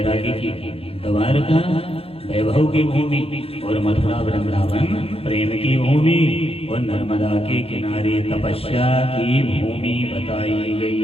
की भूमि, द्वारका वैभव की भूमि, और मथुरा वृंदावन प्रेम की भूमि, और नर्मदा के किनारे तपस्या की भूमि बताई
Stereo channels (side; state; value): right; late; 0.27 ms